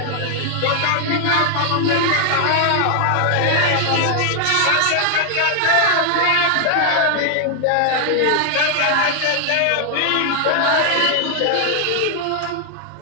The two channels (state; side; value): different; both; correlation 0.00